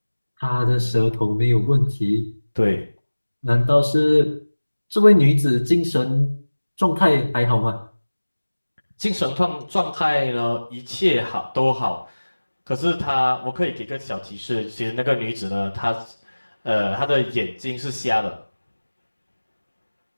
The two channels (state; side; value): inverted; both; correlation -1.00